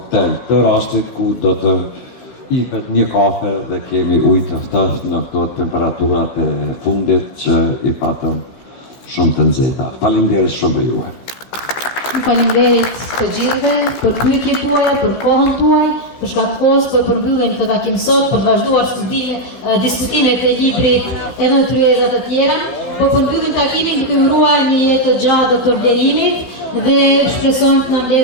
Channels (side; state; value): right; late; 15 ms